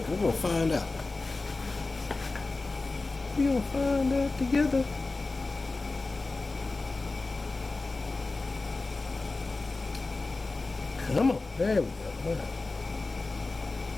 we're going to find out. We're going to find out together. Come on, there we go. Wow.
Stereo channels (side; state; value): right; quieter; 3.5 dB